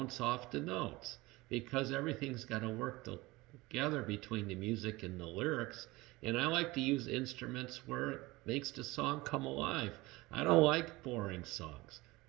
off the notes, because everything's got to work together between the music and the lyrics. And I like to use instruments where it makes the song come alive. I don't like boring songs,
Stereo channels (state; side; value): quieter; left; 21.2 dB